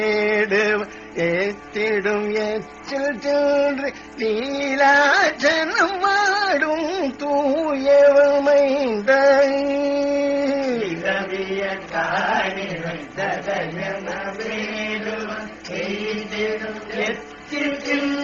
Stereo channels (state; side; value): identical; both; correlation 1.00